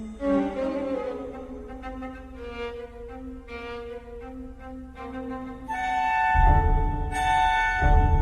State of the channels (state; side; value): identical; both; correlation 1.00